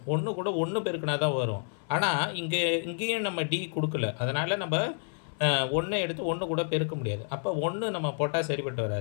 1 கூட 1 பெருக்கினா தான் வரும். ஆனால் இங்கேயும் நம்ம டி கொடுக்கல. அதனால் நம்ம 1 எடுத்து 1 கூட பெருக்க முடியாது. அப்போ 1 நம்ம போட்டால் சரிப்பட்டு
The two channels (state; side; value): silent; right; 58 dB below the other